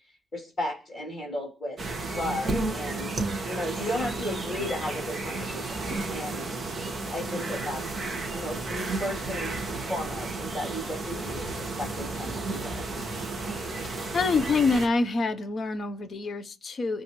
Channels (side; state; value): both; normal; correlation 0.76